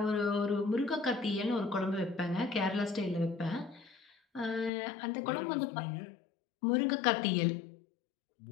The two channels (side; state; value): right; drops out; at 4.7 s